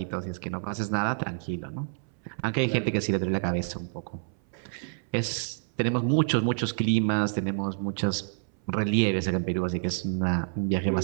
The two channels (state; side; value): silent; left; 59 dB below the other